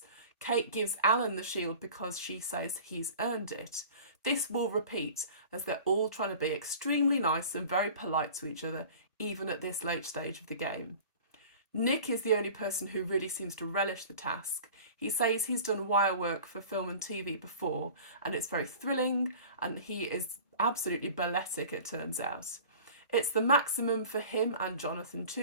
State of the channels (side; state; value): both; inverted; correlation -0.41